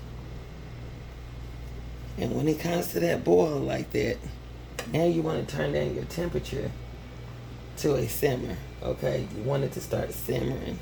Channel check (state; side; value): identical; both; correlation 1.00